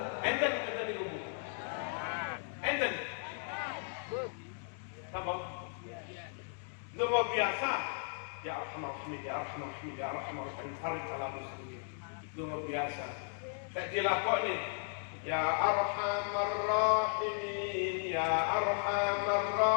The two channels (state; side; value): silent; right; 54 dB below the other